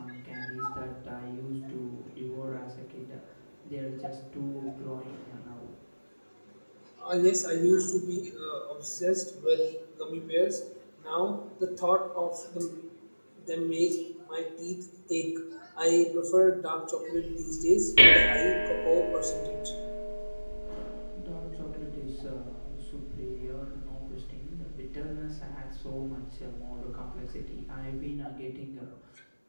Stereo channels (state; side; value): inverted; both; correlation -1.00